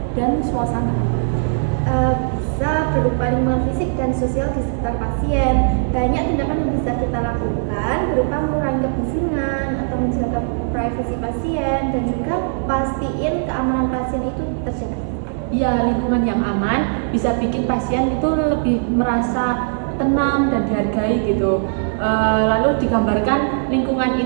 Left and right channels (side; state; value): left; silent; digital silence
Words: dan suasana. Bisa berupa lingkungan fisik dan sosial di sekitar pasien. Banyak tindakan yang bisa kita lakukan berupa mengurangi kebisingan atau menjaga privasi pasien dan juga pastiin keamanan pasien itu terjaga. Ya, lingkungan yang aman bisa bikin pasien itu lebih merasa tenang dan dihargai gitu. Lalu digambarkan lingkungan